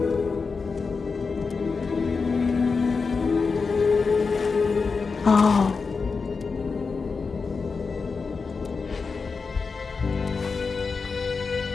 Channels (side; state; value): right; quieter; 4.8 dB